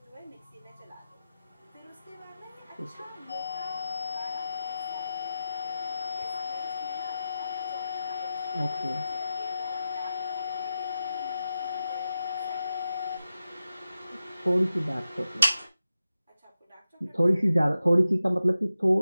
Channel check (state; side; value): inverted; both; correlation -0.91